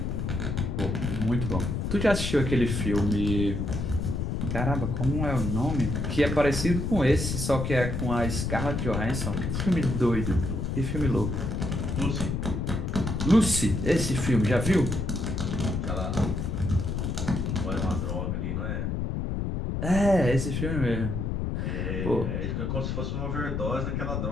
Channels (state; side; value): noise; left; rumble, 2 dB below the sound